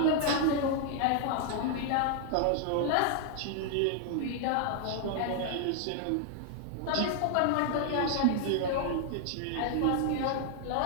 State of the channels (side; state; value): both; different; correlation -0.01